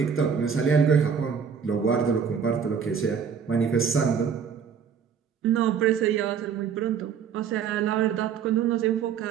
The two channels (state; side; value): quieter; left; 7.1 dB